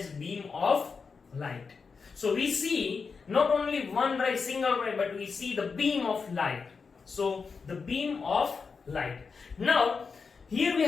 beam of light. So we see not only one ray, single ray, but we see the beam of light. So the beam of light. Now here we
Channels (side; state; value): right; quieter; 5.2 dB